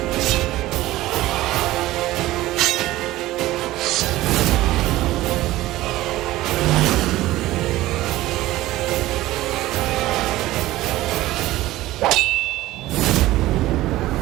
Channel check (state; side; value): quieter; left; 16.6 dB